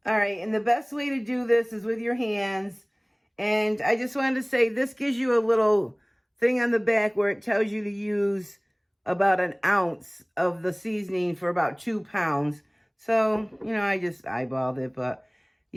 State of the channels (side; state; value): both; identical; correlation 1.00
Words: All right, and the best way to do this is with your hands. And I just wanted to say, this gives you a little thing on the back where it tells you to use about an ounce of the seasoning for about 2 pounds. So, you know, I just eyeballed it, but